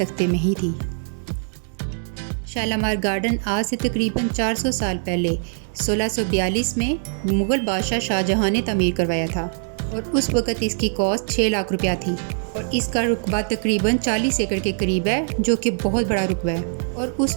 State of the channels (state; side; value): silent; left; digital silence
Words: में ही थी। शालामार गार्डन आज से तकरीबन 400 साल पहले 1642 में मुग़ल बादशाह शाहजहां ने तमीर करवाया था और उस वक़्त इसकी कॉस्ट 6 लाख रुपया थी और इसका रुकबा तकरीबन 40 एकड़ के करीब है, जो कि बहुत बड़ा रुकबा है। और उस